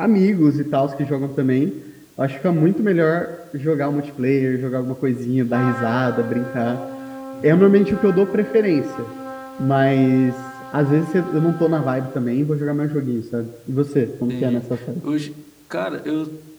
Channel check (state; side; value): identical; both; correlation 1.00